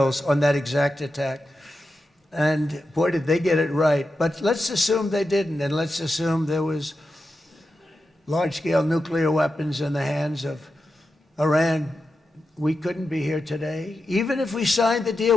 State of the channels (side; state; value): both; normal; correlation 0.90